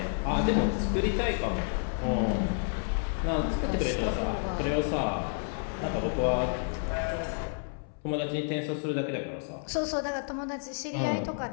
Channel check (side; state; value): right; silent; 58 dB below the other